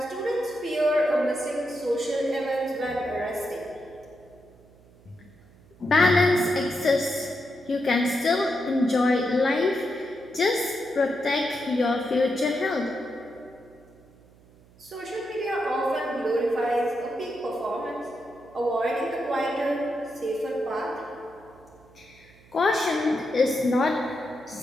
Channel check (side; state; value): right; noise; hum, 26 dB below the sound